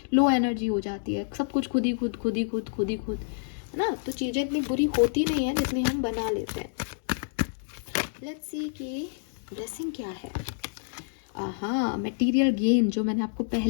लो एनर्जी हो जाती है. सब कुछ खुद ही खुद, है ना. तो चीज़ें इतनी बुरी होती नहीं है जितनी हम बना लेते हैं. लेट्स सी कि ब्लेसिंग क्या है. हाँ, मटेरियल गेन, जो मैंने आपको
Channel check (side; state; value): right; silent; digital silence